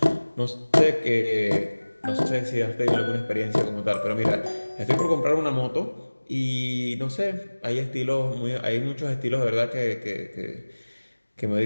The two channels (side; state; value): both; inverted; correlation -1.00